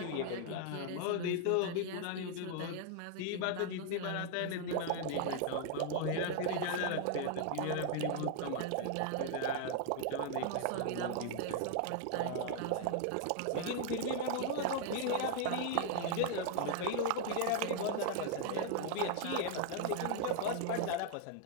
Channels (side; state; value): both; different; correlation 0.00